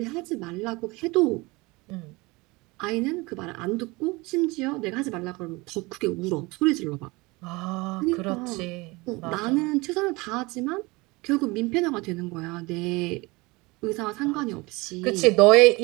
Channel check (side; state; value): left; quieter; 24.1 dB